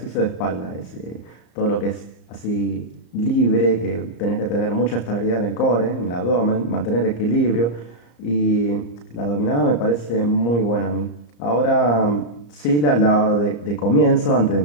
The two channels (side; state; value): right; late; 34 ms